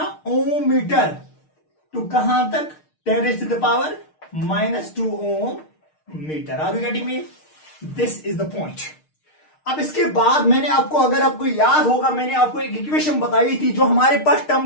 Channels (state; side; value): late; right; 6.5 ms